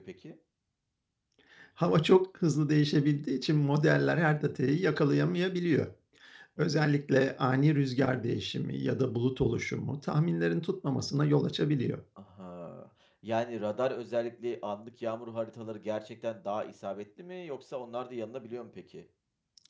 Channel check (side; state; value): both; identical; correlation 1.00